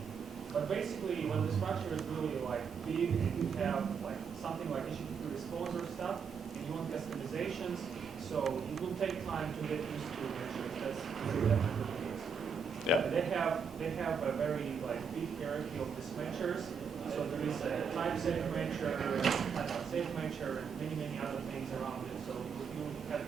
But basically, when the structure is really like big and you have like something like HTTP response or stuff, and you want customizations, so it will take time to get used to measures. That's definitely the case. Yeah. They have a very like big hierarchy of these measures.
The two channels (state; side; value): quieter; left; 6.0 dB